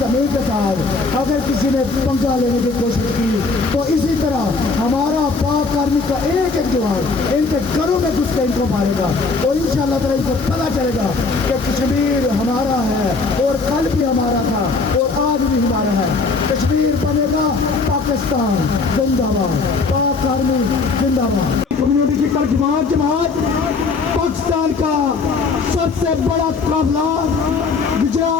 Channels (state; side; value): quieter; right; 4.2 dB